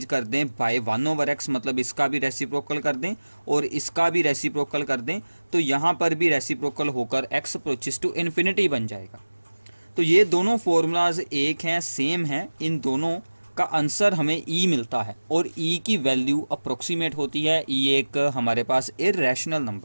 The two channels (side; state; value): both; inverted; correlation -1.00